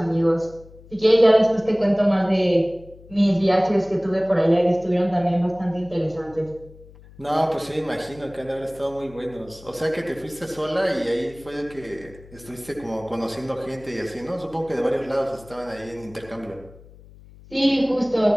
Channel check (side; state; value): left; noise; hum, 22 dB below the sound